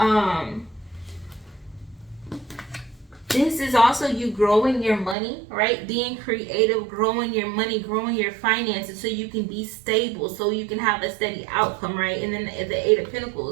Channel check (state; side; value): drops out; left; at 5.2 s